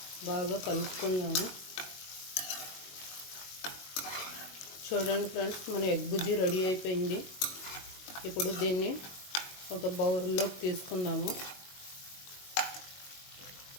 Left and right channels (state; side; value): late; right; 22 ms